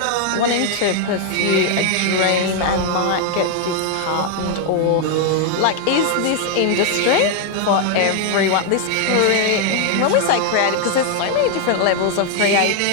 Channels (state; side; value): different; both; correlation 0.00